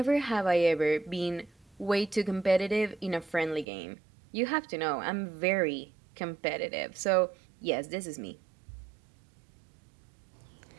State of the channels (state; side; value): drops out; left; at 3.7 s